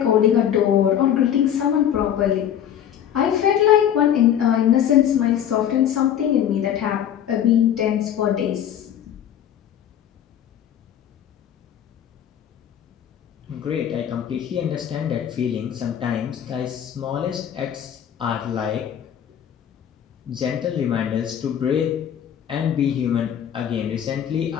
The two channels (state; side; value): quieter; right; 9.8 dB